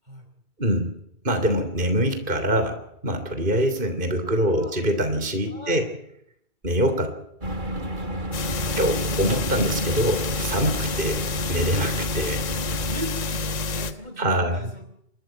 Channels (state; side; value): late; left; 2.3 ms